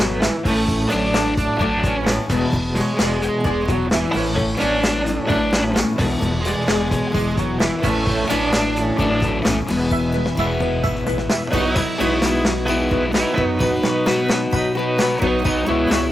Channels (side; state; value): both; normal; correlation 0.91